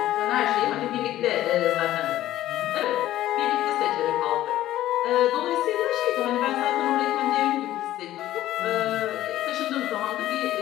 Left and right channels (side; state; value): right; quieter; 14.0 dB